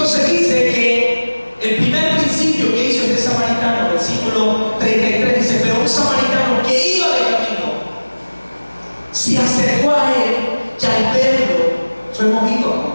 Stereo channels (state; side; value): inverted; both; correlation -1.00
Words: dice que el primer principio que hizo este samaritano, versículo 33, dice: pero un samaritano que iba de camino se acercó a él y al verlo fue movido a